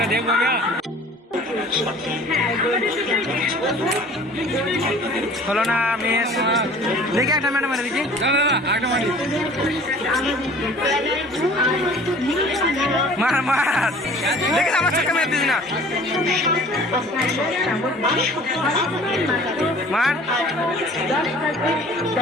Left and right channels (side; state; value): both; normal; correlation 0.48